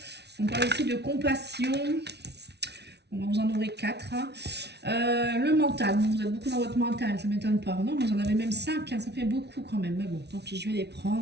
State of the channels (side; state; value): left; late; 0.49 ms